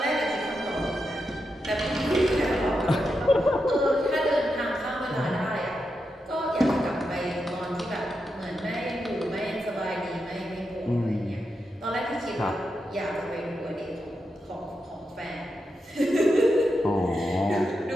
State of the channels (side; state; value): both; normal; correlation 0.86